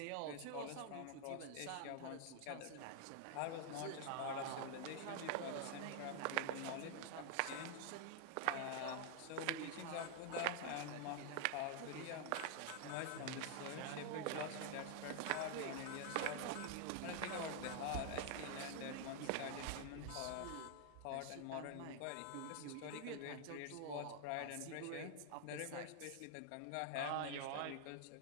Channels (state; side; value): different; both; correlation 0.00